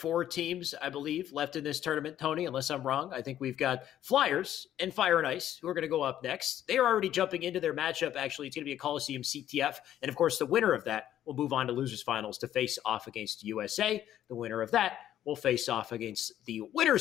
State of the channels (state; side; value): quieter; right; 11.6 dB